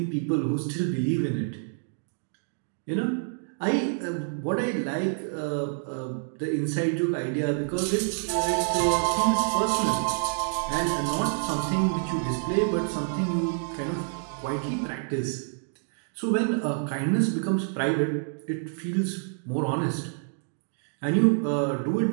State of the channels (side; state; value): left; silent; digital silence